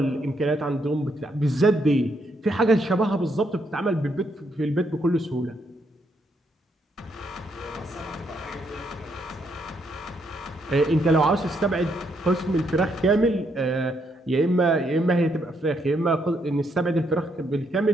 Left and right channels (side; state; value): both; normal; correlation 0.75